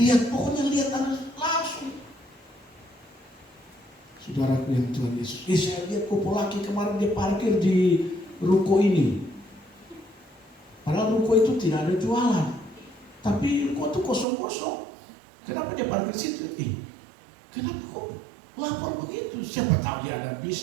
pokoknya lihat langsung. Saudaraku yang Tuhan Yesus, saya lihat kupu laki kemarin dia parkir di ruko ini. Padahal ruko itu tidak ada jualan, tapi ruko itu kosong-kosong. Kenapa dia parkir situ? Kenapa kok lapor begitu? Siapa tahu dia ada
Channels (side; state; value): left; drops out; at 14.2 s